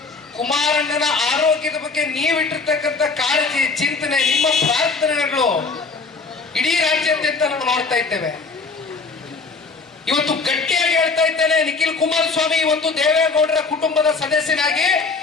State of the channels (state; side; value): quieter; right; 4.2 dB